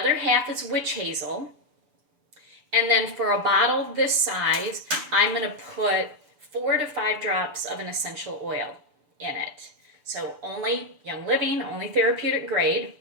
half is witch hazel. And then for a bottle this size, I'm going to put 4 to 5 drops of an essential oil in it. So only Young Living, only therapeutic grade.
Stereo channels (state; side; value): late; left; 6.8 ms